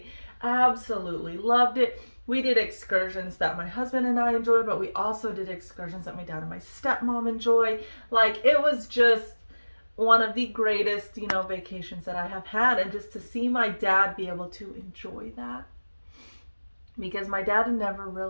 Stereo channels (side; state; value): both; inverted; correlation -1.00